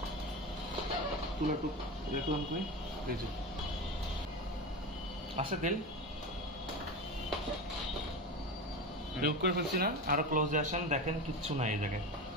তুলা টুক দেখলাম কই, এই যে আছে তেল রিমুভ করে ফেলছি না। আরো ক্লোজে আসেন, দেখেন কিচ্ছু নাই এই জায়গায়,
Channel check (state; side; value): normal; both; correlation 0.24